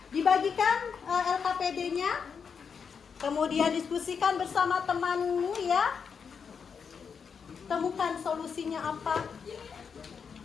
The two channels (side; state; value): right; quieter; 6.3 dB